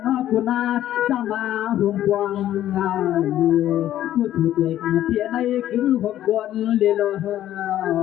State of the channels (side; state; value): right; quieter; 12.4 dB